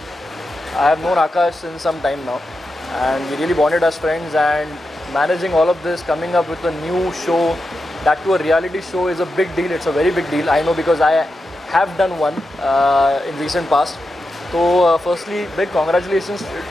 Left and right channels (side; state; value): both; normal; correlation 0.89